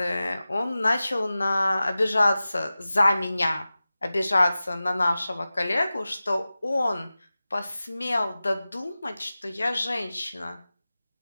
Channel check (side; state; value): both; inverted; correlation -0.96